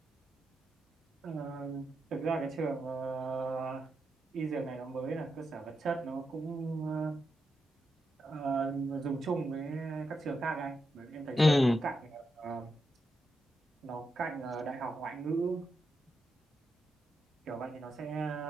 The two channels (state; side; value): normal; both; correlation 0.85